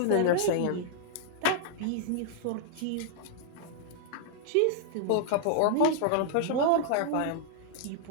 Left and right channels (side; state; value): both; different; correlation -0.01